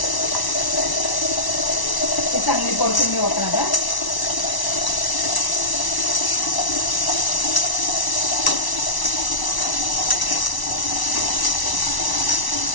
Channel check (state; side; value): late; right; 1.0 ms